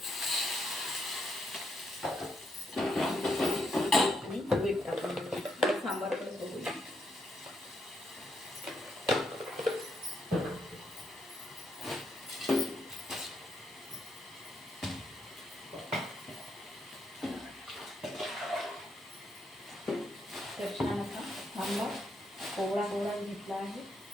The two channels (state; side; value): normal; both; correlation 0.78